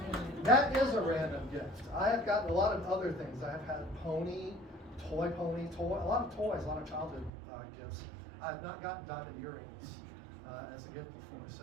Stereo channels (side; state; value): left; drops out; at 7.3 s